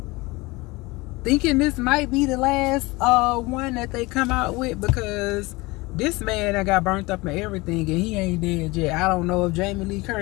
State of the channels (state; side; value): quieter; right; 23.0 dB